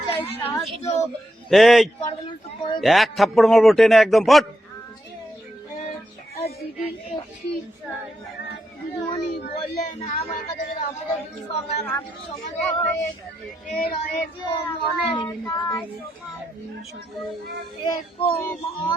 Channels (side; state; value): both; normal; correlation 0.83